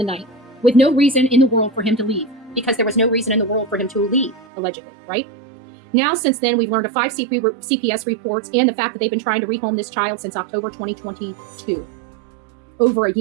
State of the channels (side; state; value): left; drops out; at 4.5 s